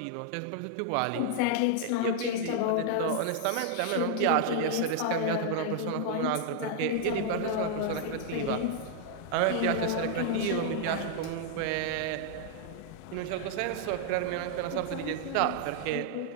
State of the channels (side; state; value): both; different; correlation 0.00